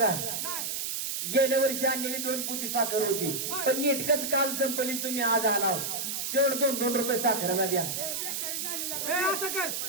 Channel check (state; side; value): noise; right; hiss, 2 dB below the sound